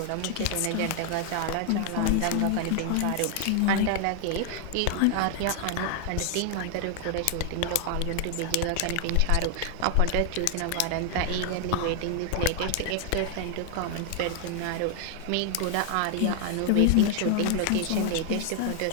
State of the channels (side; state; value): both; different; correlation 0.00